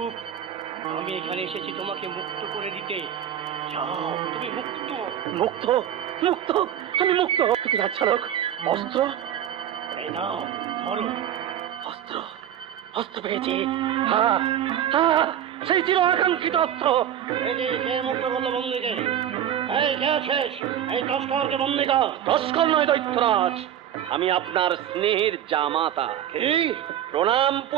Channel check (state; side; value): quieter; left; 10.4 dB